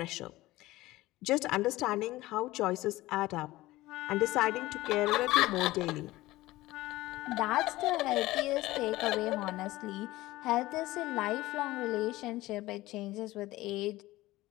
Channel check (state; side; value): quieter; right; 18.0 dB